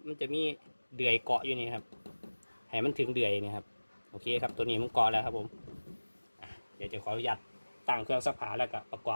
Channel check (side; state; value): both; inverted; correlation -1.00